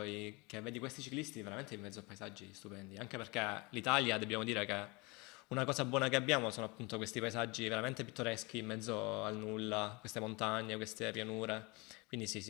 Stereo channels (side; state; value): right; quieter; 26.6 dB